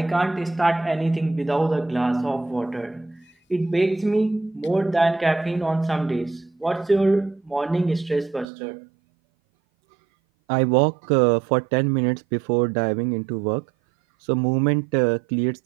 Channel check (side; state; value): left; drops out; at 8.5 s